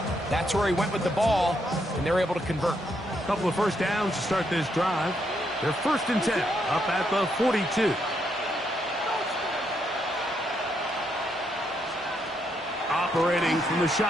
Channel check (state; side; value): normal; both; correlation 0.77